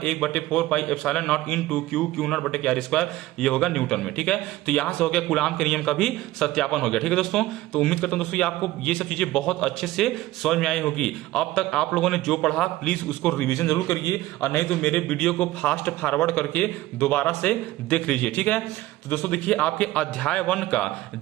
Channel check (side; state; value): left; quieter; 16.7 dB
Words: 1/4 पाई epsilon naught into Q not बटे के आर स्क्वायर। ये होगा न्यूटन में, ठीक है। तो यहां से हो गया कूलाम के नियम का भी सत्यापन हो गया, ठीक है दोस्तों। तो उम्मीद करता हूं दोस्तों आपको ये सब चीजें बहुत अच्छे से समझ में आई होगी। अब तक आप लोगों ने जो पढ़ा प्लीज उसको रिविजन जरूर करिए, और नहीं तो मेरे वीडियो को फास्ट फॉरवर्ड करके दोबारा से देख लीजिए, ठीक है। तो दोस्तों देखिए आपके अध्याय 1 का